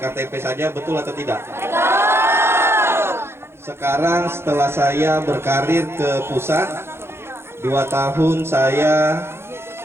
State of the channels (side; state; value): left; late; 0.12 ms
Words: saja, betul atau tidak? Sekarang setelah saya berkarir ke pusat 2 tahun saya